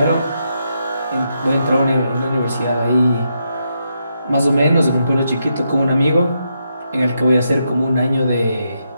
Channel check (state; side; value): inverted; both; correlation -0.81